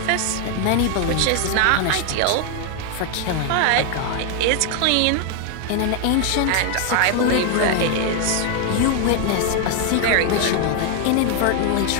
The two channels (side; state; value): both; different; correlation 0.00